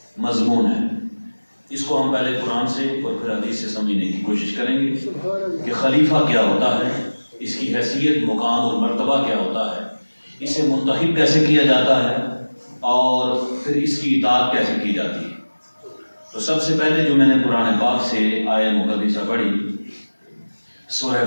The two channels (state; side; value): inverted; both; correlation -1.00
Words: مضمون ہے. اس کو ہم پہلے قرآن سے اور پھر حدیث سے سمجھنے کی کوشش کریں گے کہ خلیفہ کیا ہوتا ہے، اس کی حیثیت، مقام اور مرتبہ کیا ہوتا ہے، اسے منتخب کیسے کیا جاتا ہے اور پھر اس کی اطاعت کیسے کی جاتی ہے. تو سب سے پہلے جو میں نے قرآن پاک سے آیت مقدسہ پڑھی سورہ